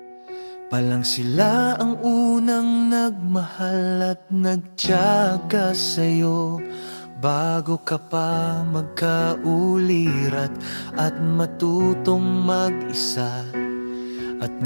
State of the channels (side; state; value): both; inverted; correlation -1.00